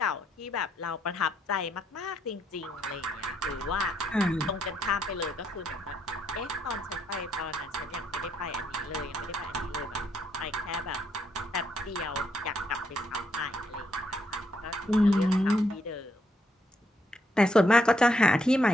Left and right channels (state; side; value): normal; both; correlation 0.75